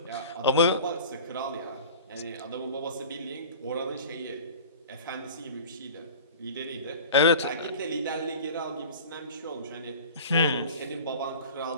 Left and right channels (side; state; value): both; inverted; correlation -0.39